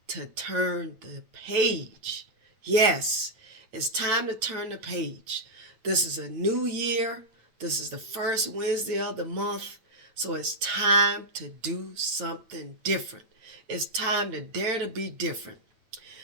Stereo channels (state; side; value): late; left; 9.1 ms